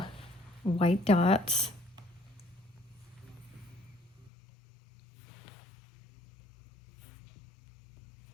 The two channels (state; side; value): drops out; right; at 4.3 s